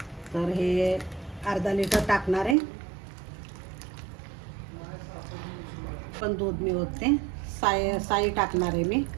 तर हे अर्धा लिटर टाकणार आहे. पण दूध मी ओतते. साई टाकणार आहे मी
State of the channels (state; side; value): drops out; left; at 2.6 s